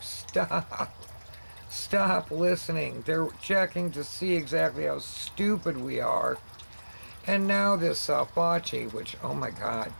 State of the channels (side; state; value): both; inverted; correlation -1.00